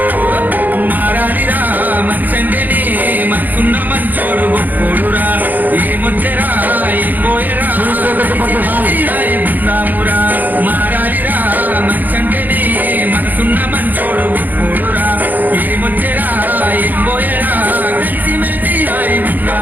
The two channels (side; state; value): left; late; 0.085 ms